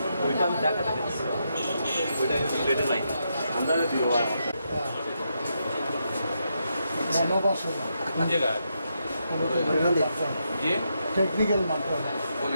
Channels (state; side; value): inverted; both; correlation -0.82